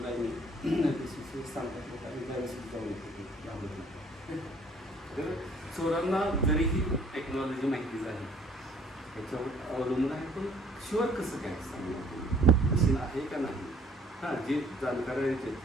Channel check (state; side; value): normal; both; correlation 0.59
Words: आहे मी. BCCवर सांगतात लोक आणि त्यावेळेस जाऊन येतो. तर चोरांना जरीही टेक्नॉलॉजी माहिती झाली त्याच्यावर अवलंबून आहे, पण शुअर कसं काय सांगणार मशीन आहे का नाही. हां, जे जाणकार आहे